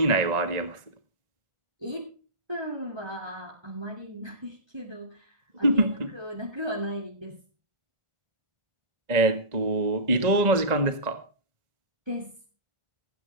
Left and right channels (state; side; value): late; left; 1.9 ms